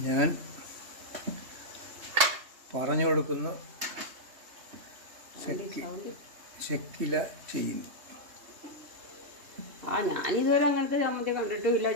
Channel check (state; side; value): late; left; 3.2 ms